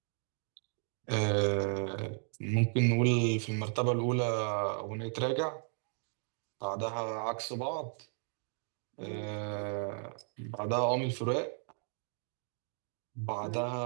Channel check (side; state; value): left; silent; 55 dB below the other